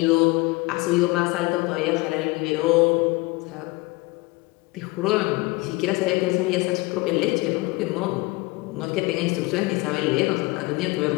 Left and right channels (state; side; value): quieter; right; 23.6 dB